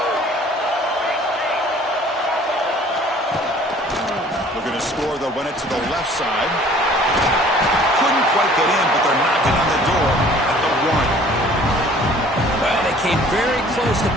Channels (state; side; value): normal; both; correlation 0.52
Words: Looking to score, they'll run it to the left side. Couldn't quite get in, but they're knocking on the door at the 1. Well, they came very close to